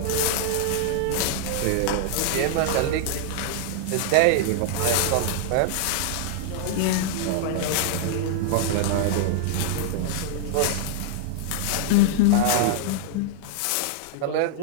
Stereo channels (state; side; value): different; both; correlation -0.01